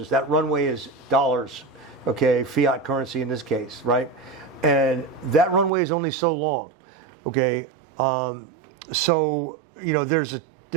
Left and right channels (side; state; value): left; drops out; at 5.7 s